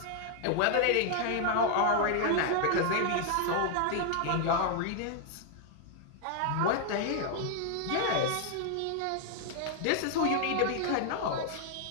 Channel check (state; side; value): different; both; correlation 0.00